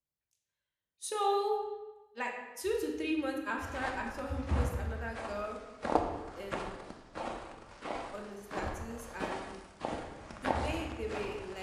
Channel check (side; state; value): both; identical; correlation 1.00